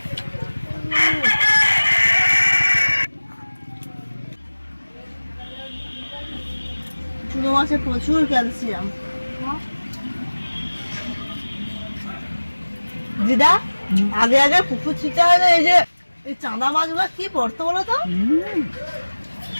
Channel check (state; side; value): inverted; both; correlation -1.00